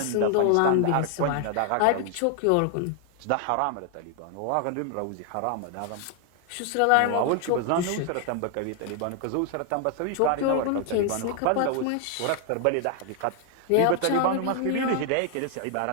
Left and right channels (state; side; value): different; both; correlation 0.00